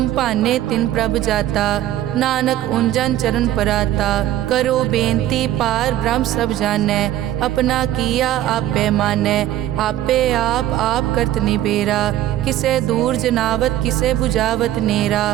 भाने तिन प्रभ जाता, नानक उंजन चरण पराता। करो बेनती पार ब्रह्म सब जानै, अपना किया आपे मानै। आपे आप करत निबेरा, किसे दूर जनावत किसे बुझावत नेरा।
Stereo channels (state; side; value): quieter; left; 13.1 dB